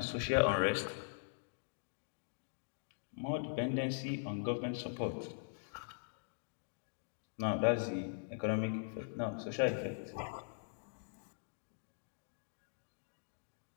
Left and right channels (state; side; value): silent; right; digital silence